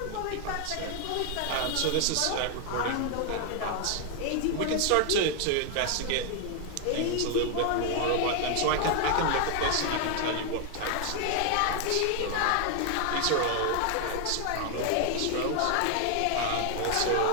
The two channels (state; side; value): different; both; correlation 0.00